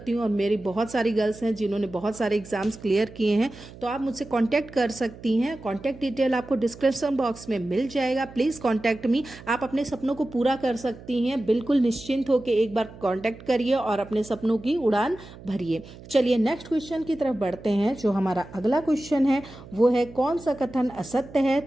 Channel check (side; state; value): right; noise; hum, 18 dB below the sound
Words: हूँ और मेरी बहुत सारी गर्ल्स हैं जिन्होंने बहुत सारे एग्जाम्स क्लियर किए हैं। तो आप मुझसे कॉन्टैक्ट कर सकती हैं। कॉन्टैक्ट डिटेल आपको डिस्क्रिप्शन बॉक्स में मिल जाएगा। Please contact me. आप अपने सपनों को पूरा कर सकती हैं। बिल्कुल निश्चिंत होकर एक बार कॉन्टैक्ट करिए और अपने सपनों की उड़ान भरिए। चलिए नेक्स्ट क्वेश्चन की तरफ बढ़ते हैं। जो हमारा अगला क्वेश्चन है वो है, कौन सा कथन असत्य है।